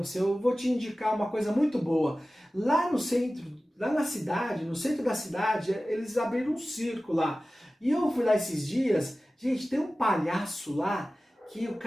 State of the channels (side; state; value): both; normal; correlation 0.96